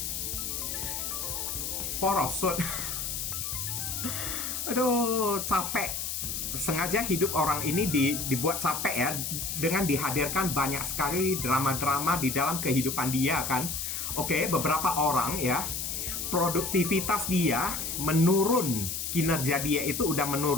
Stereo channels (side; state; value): left; noise; hiss, 3 dB below the sound